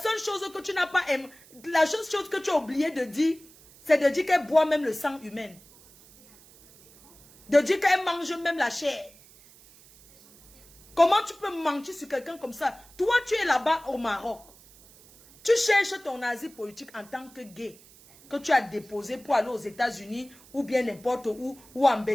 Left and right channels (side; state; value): right; noise; hiss, 24 dB below the sound